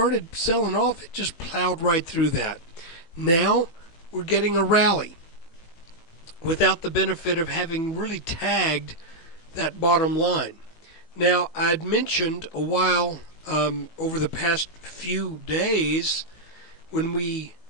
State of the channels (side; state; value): right; late; 18 ms